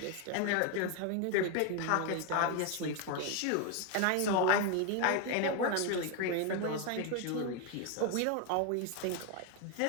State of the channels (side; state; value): both; different; correlation 0.01